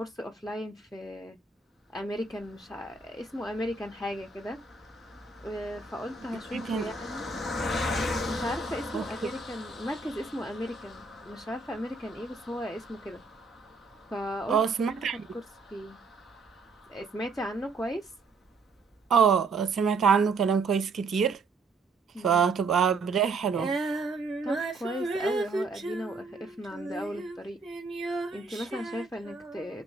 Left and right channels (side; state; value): left; quieter; 4.0 dB